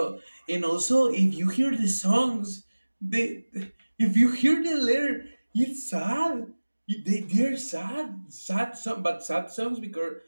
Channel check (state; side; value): inverted; both; correlation -1.00